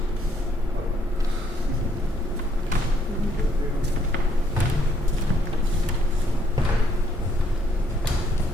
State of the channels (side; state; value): both; normal; correlation 0.70